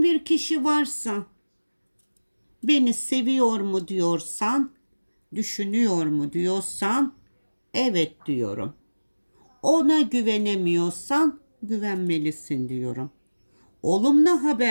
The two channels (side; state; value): both; inverted; correlation -1.00